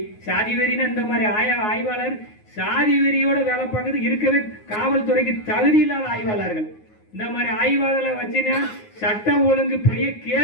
வெறினா இந்த மாதிரி ஆய்வாளர் சாதி வெறியோட வேலை பார்க்கறது இருக்கவே காவல்துறைக்கு தகுதி இல்லாத ஆய்வாளர்கள். இந்த மாதிரி ஆய்வாளர்களை வச்சுன்னா சட்டம் ஒழுங்கு பெரிய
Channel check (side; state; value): right; late; 9.5 ms